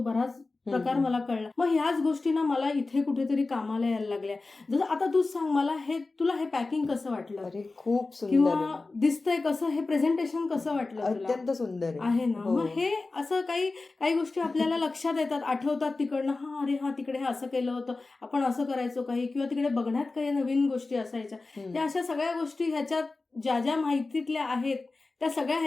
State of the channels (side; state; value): right; quieter; 3.5 dB